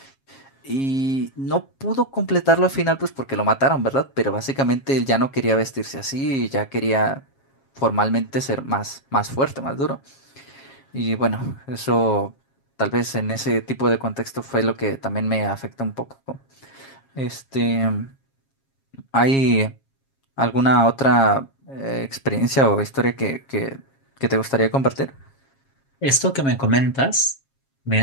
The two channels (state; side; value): late; right; 7.4 ms